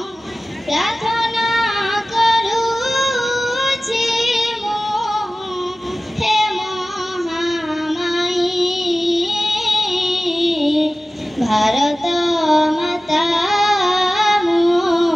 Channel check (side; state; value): both; normal; correlation 0.96